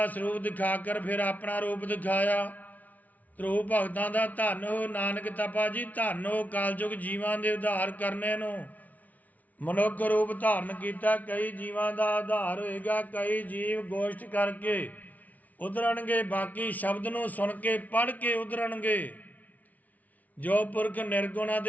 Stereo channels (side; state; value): right; late; 0.074 ms